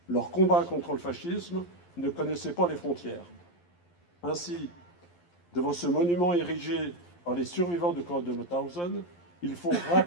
Leur combat contre le fascisme ne connaissait pas les frontières. Ainsi, devant ce monument érigé par les survivants de camp de Mauthausen, il faut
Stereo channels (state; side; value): late; right; 11 ms